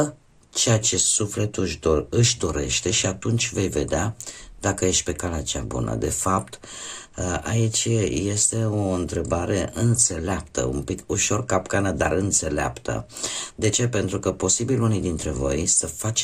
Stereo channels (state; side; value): identical; both; correlation 1.00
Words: ceea ce sufletul își dorește și atunci vei vedea dacă ești pe calea cea bună. De fapt, aici este o întrebare înțeleaptă, un pic ușor capcană, dar înțeleaptă. De ce? Pentru că posibil unii dintre voi să